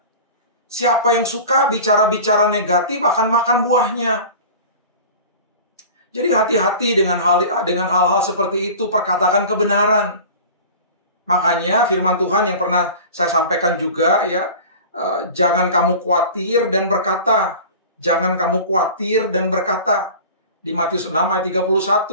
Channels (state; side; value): inverted; both; correlation -0.38